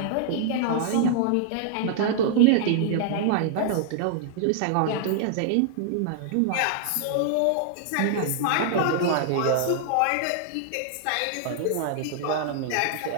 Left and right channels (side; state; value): both; different; correlation -0.01